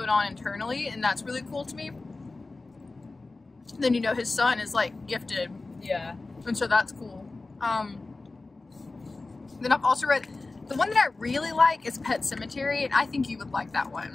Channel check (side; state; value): right; quieter; 3.4 dB